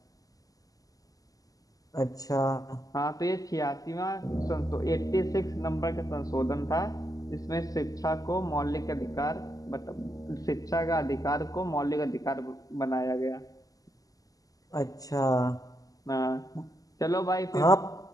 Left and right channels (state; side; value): late; right; 0.17 ms